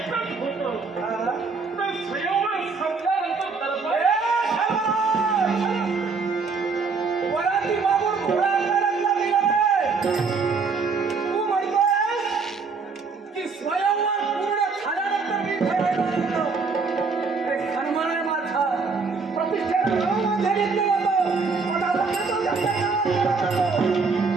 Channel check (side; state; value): left; quieter; 4.7 dB